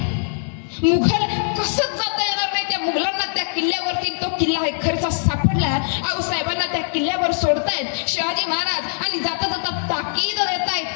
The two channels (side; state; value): right; silent; digital silence